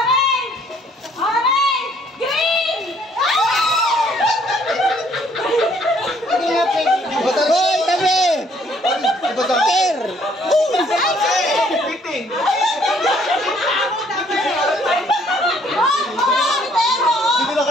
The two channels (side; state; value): both; normal; correlation 0.63